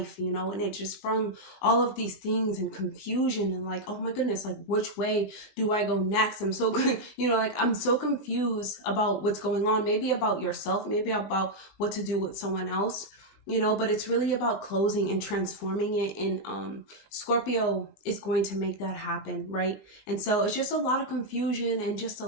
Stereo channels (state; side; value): late; right; 19 ms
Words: and it just brung all of these things and confusion and like, oh my goodness, like which way do I go next? I'm so good, I'm so confused about what's going on, maybe about yourself, maybe about what to do with someone else. But it's really about closing and transforming it. And Scorpio is going to make that happen, right? And so it's just a lot of confusion and just a